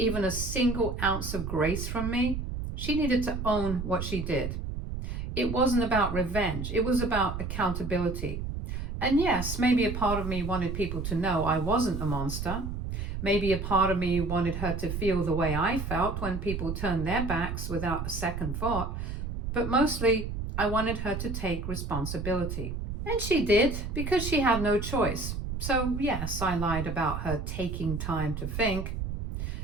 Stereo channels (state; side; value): noise; right; rumble, 5 dB below the sound